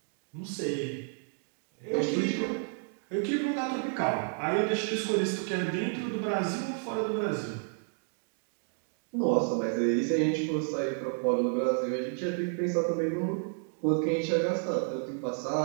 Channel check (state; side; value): silent; left; 57 dB below the other